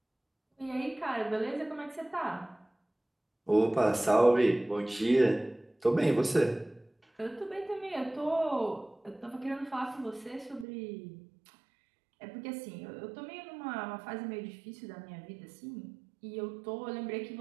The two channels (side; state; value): left; drops out; at 10.7 s